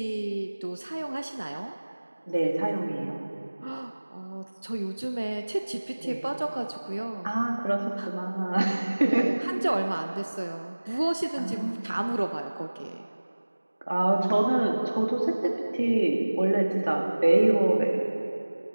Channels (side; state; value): both; inverted; correlation -1.00